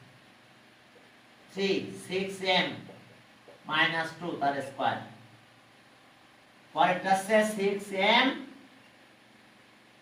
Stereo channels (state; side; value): identical; both; correlation 1.00